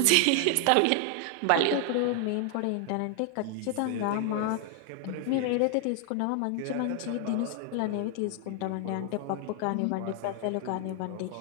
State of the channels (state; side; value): different; both; correlation 0.00